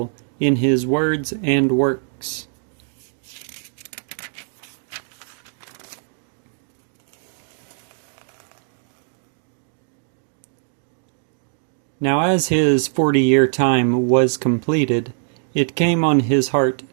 in his words and works. Now as his 40-year time was completed, it came on his heart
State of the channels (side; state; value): left; silent; digital silence